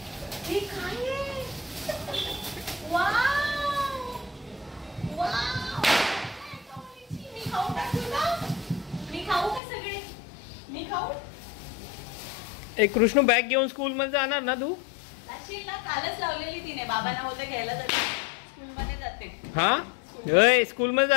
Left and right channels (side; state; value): right; drops out; at 9.6 s